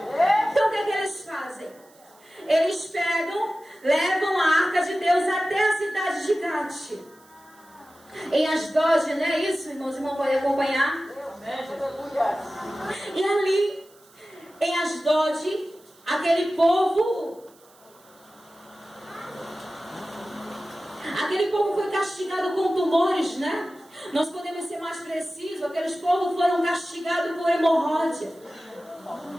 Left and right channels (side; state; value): right; noise; hiss, 28 dB below the sound